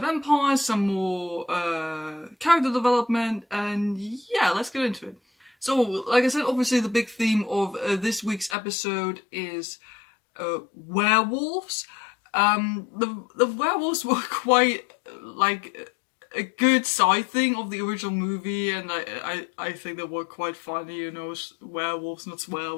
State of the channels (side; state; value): right; drops out; at 8.6 s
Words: some more character development, and yeah, let's get into it. So, like I said, obviously the big theme of this week's episode is werewolves. The werewolves were quite like a good side thing of the original movie, and I think they were quite funny, you know, werewolves, not